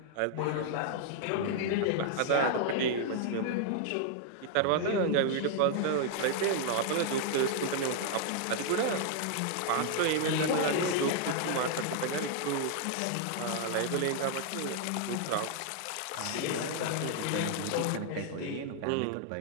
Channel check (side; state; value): both; different; correlation 0.00